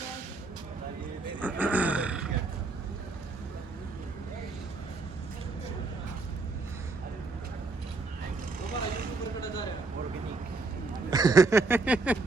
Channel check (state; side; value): quieter; left; 3.6 dB